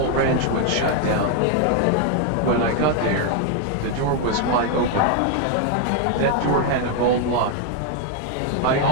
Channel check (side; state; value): both; different; correlation 0.00